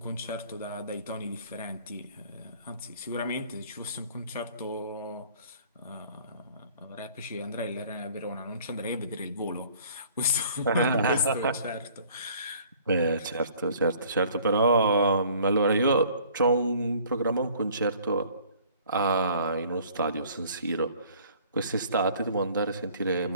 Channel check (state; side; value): inverted; both; correlation -0.54